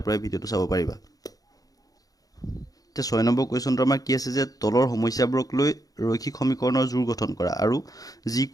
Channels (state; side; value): late; right; 0.18 ms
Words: পৰাই ভিডিঅ'টো চাব পাৰিবা। এতিয়া 6 নম্বৰ কুৱেশ্যনটো আমাৰ কি আছে যে তলৰ সমস্যাবোৰক লৈ ৰৈখিক সমীকৰণৰ জোৰ গঠন কৰা আৰু